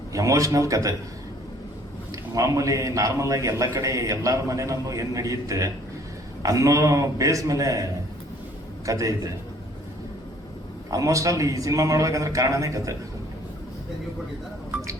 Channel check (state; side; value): normal; both; correlation 0.58